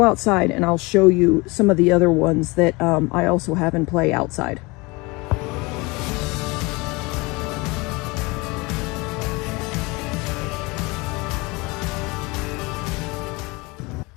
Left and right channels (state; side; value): quieter; right; 25.2 dB